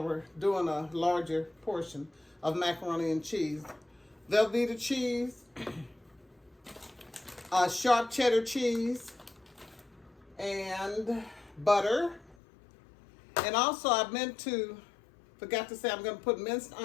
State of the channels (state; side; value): drops out; right; at 12.4 s